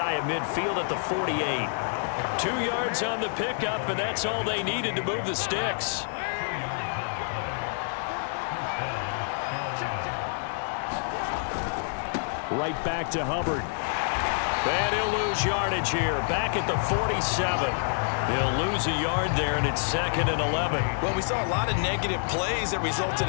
of midfield at the 48. 2 yards on the pickup, and that's all they needed to move the sticks. Right back to Hubbard. And he'll lose yardage here. Back at the 47. He'll lose a yard there, and it's 2nd and 11. Well, we saw a lot of negative plays that resulted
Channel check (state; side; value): silent; right; digital silence